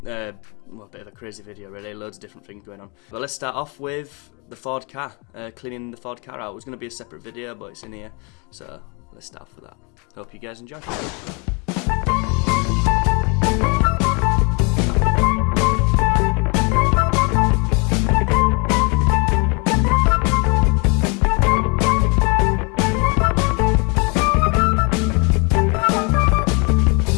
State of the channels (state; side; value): quieter; right; 32.1 dB